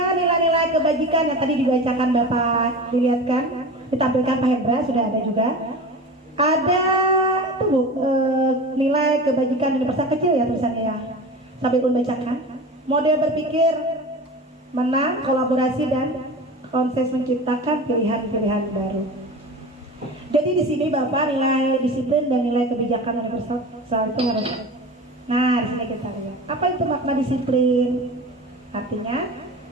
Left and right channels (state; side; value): normal; both; correlation 0.32